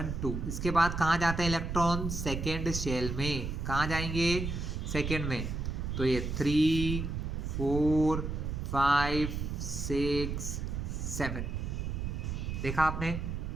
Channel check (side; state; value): right; noise; rumble, 3 dB below the sound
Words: 2। इसके बाद कहाँ जाते हैं इलेक्ट्रॉन? सेकेंड शेल में। कहाँ जाएंगे? सेकेंड में। तो ये 3 4 5 6 7 देखा आपने,